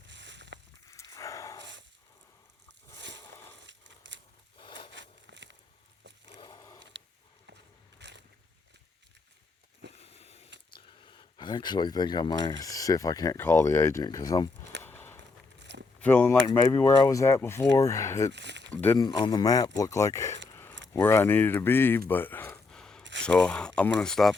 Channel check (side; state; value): right; quieter; 4.0 dB